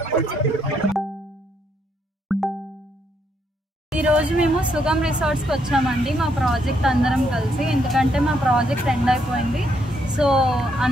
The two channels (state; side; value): normal; both; correlation 0.75